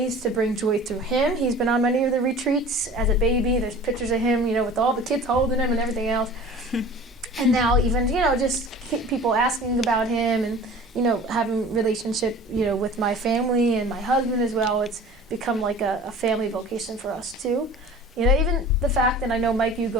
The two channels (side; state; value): both; normal; correlation 0.42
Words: to bring joy through him. He's been on many of the retreats as a baby. There's pictures of him, with all the kids holding him and everything else. And now even, just people asking about him and, having relationship, with my family and my husband as well. It's become like a family vocation for us too. Even the fact, and I know, Mike, you